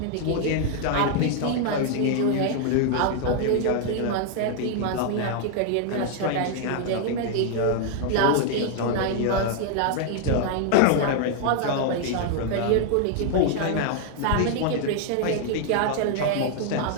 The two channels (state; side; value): different; both; correlation 0.00